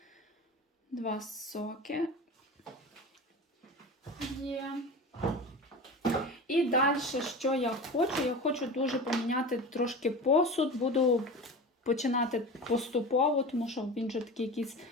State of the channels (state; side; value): normal; both; correlation 0.31